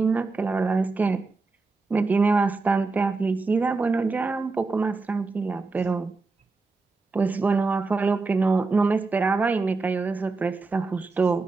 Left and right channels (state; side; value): quieter; left; 3.9 dB